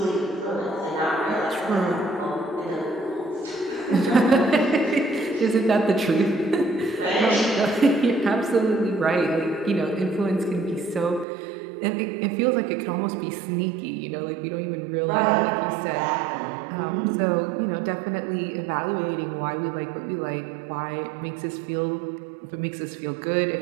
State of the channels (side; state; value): left; drops out; at 11.2 s